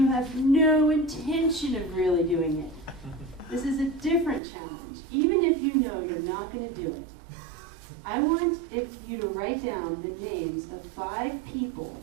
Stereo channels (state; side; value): drops out; left; at 4.4 s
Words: have no intention of really doing it. This is a different challenge. Even if you know you're not going to do it, I want you to write down the names of 5 people